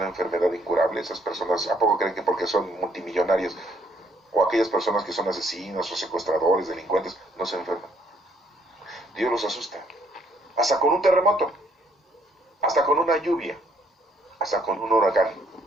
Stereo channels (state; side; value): normal; both; correlation 0.67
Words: enfermedad incurable, esas personas, ¿a poco creen que porque son multimillonarios o aquellas personas que son asesinos o secuestradores, delincuentes, no se enferman? Dios los asusta. Hasta con un terremoto, hasta con una lluvia, hasta con un huracán.